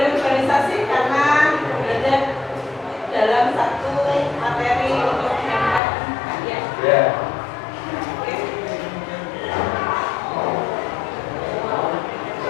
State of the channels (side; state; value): right; drops out; at 5.8 s